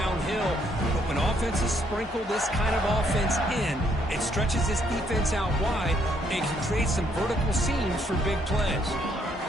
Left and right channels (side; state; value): both; normal; correlation 0.71